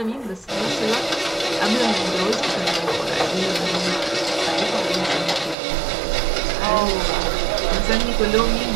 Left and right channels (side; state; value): left; drops out; at 5.6 s